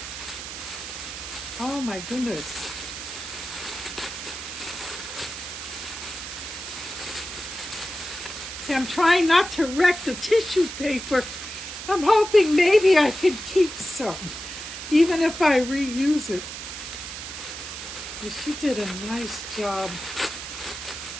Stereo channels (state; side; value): noise; right; hiss, 8 dB below the sound